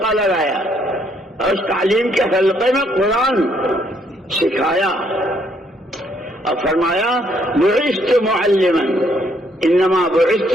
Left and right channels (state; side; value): normal; both; correlation 0.70